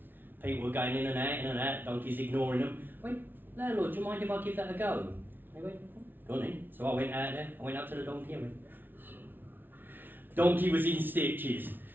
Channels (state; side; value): late; left; 0.095 ms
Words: People were going in and out, donkeys ignoring them. I went, landlord, do you mind if I give that a go? They went, go on in. So I went out there, I went up to the donkey and went, donkey was in stitches,